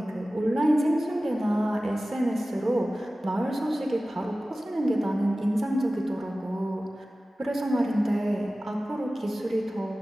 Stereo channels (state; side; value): normal; both; correlation 0.96